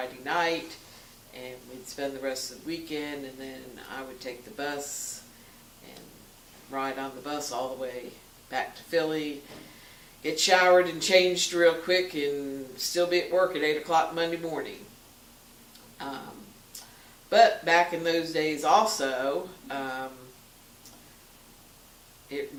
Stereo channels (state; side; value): identical; both; correlation 1.00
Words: night, and we'd spend the rest of the weekend, and then I would take the bus and ride on the bus all the way back to Philly, get showered and changed real quick, and still be at work at 8 o'clock Monday morning. But back in those days also, it